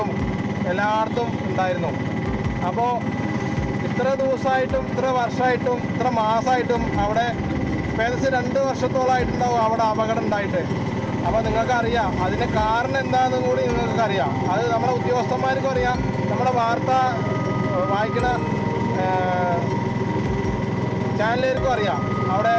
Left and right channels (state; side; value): identical; both; correlation 1.00